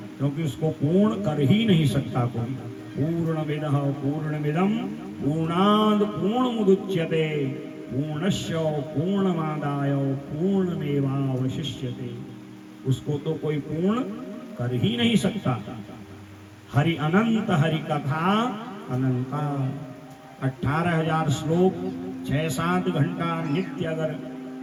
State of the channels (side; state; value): both; identical; correlation 1.00